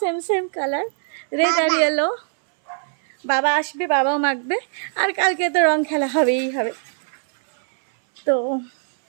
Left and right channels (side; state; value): left; silent; 63 dB below the other